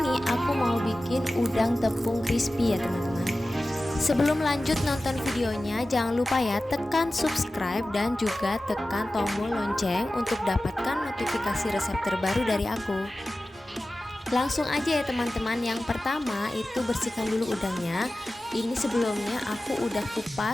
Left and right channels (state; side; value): normal; both; correlation 0.95